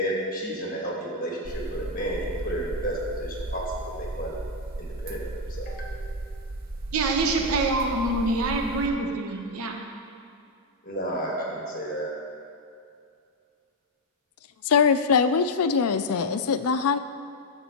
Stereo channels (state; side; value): normal; both; correlation 0.02